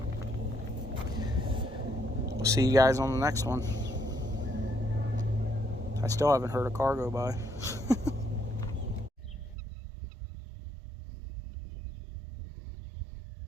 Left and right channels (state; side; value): drops out; left; at 9.6 s